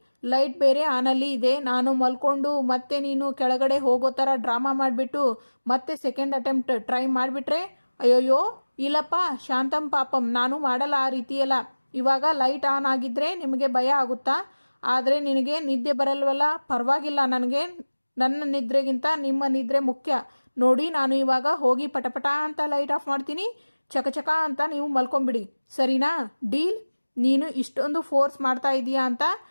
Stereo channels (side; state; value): both; inverted; correlation -1.00